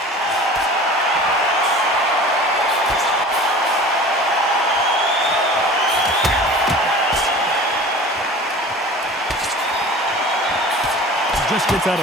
Just gets out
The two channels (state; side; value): normal; both; correlation 0.40